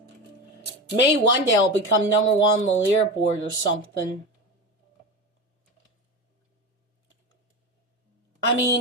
maybe one day I'll become number 1 on the leaderboard or something. I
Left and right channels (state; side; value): normal; both; correlation 0.24